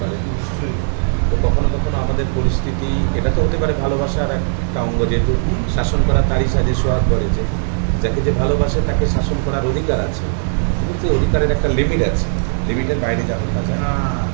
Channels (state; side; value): silent; left; digital silence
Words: নিশ্চয়ই। তো কখনো কখনো আমাদের পরিস্থিতি, এটা তো হতে পারে ভালোবাসার একটা অঙ্গ, যেহেতু শাসন করা তারই সাজে সোহাগ করে, যে যাকে যে ভালোবাসে তাকে শাসন করার অধিকার আছে, কিন্তু সেই অধিকারের একটা লিমিট আছে, লিমিটের বাইরে যাবে না যায়।